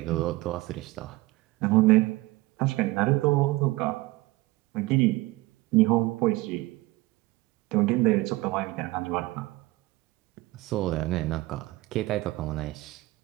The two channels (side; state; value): left; quieter; 20.3 dB